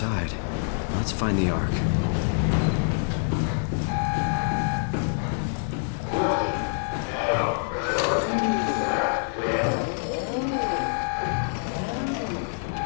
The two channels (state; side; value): silent; right; digital silence